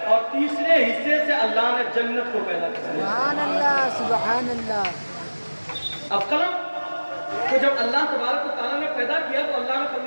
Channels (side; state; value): both; inverted; correlation -1.00